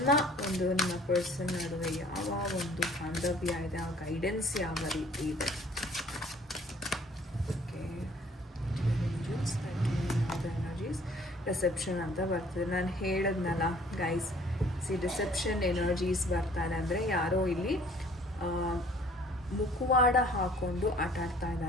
ಪರ್ಸನ್ ನಡುವೆ ಯಾವ ಒಂದು ಬಾಂಧವ್ಯ ಇದೆ, ಆ ಗೈಡೆನ್ಸ್ ಯಾವ ರೀತಿ ಇದೆ. ರಿಸೆಪ್ಷನ್ ಅಂತ ಬರ್ತದೆ. ನಾನು ಹೇಳಿದ್ನಲ್ಲ ಗೈಸ್, ರಿಸೆಪ್ಷನ್ ಎನರ್ಜೀಸ್ ಬರ್ತಾರೆ ಅಂದರೆ ಯಾರೋ ಇಲ್ಲಿ ಮುಖವಾಡ ಹಾಕ್ಕೊಂಡು ಆಟಾಡ್ತಾ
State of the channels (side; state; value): both; normal; correlation 0.55